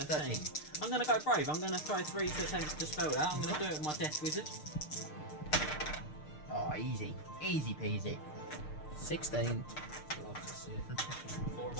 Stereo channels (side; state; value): right; late; 6.6 ms